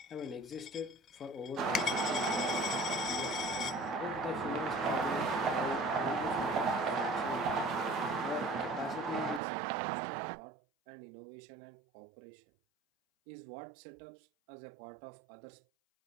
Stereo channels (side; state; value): left; drops out; at 9.4 s